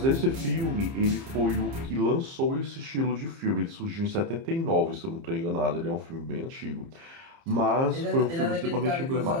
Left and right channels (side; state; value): left; late; 30 ms